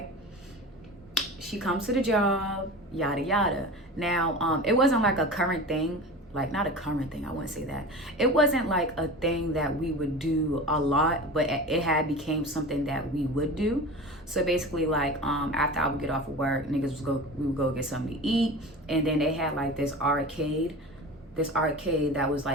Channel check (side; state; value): both; normal; correlation 0.32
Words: She comes to the job, yada yada. Now, it wasn't like a current thing, like not a current thing, I wouldn't say that. It wasn't like a thing that we would do a lot, but it had became something that we would do. So basically, like after I would get off of work, we would go get something to eat, and then they had like this arcade that was